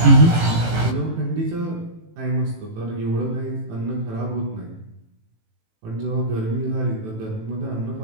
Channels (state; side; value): late; left; 18 ms